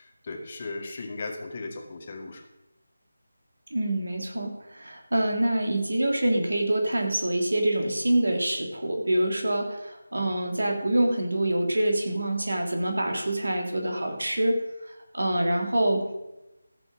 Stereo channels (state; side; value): inverted; both; correlation -0.95